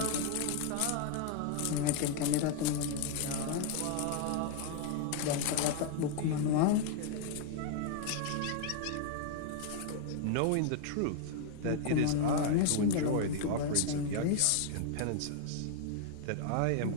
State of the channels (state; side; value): different; both; correlation 0.00